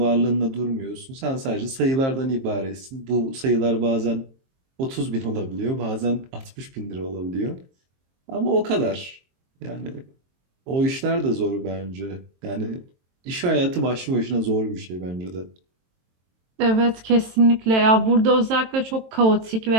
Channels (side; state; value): left; late; 23 ms